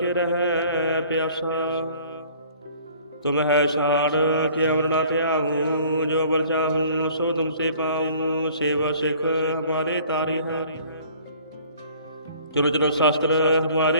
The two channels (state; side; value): inverted; both; correlation -0.52